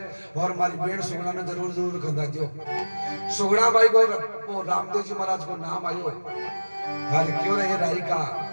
और हमारी बेड़ सुगना ने जरूर जरूर खंदा जो सुगना भाई को वो रामदेव जी महाराज को नाम आयो हर क्यों रहे राई का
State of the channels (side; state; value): both; inverted; correlation -1.00